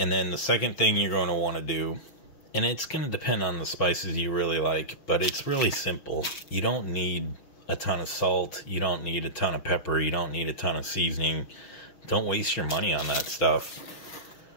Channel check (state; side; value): late; right; 6.4 ms